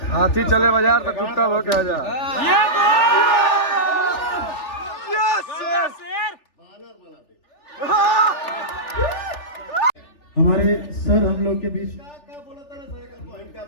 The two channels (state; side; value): late; right; 3.4 ms